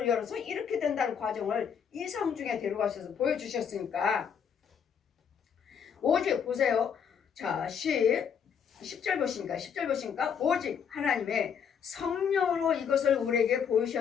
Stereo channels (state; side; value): quieter; right; 7.4 dB